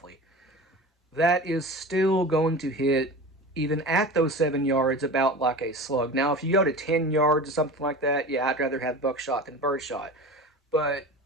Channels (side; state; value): both; normal; correlation 0.33